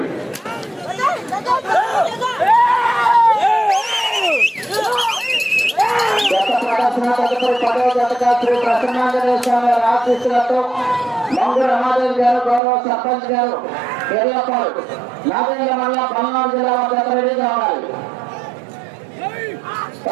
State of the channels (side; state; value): left; drops out; at 12.6 s